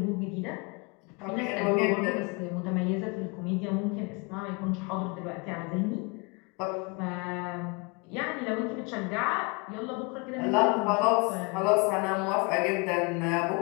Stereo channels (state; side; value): quieter; right; 29.6 dB